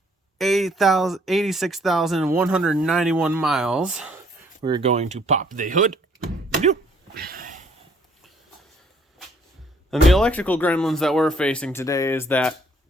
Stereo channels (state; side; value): normal; both; correlation 0.63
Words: 86,191 miles. We're going to pop the hood. And the electrical gremlins that we're facing today is that